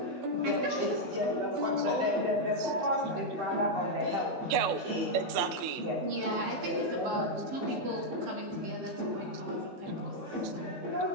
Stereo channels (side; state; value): left; late; 16 ms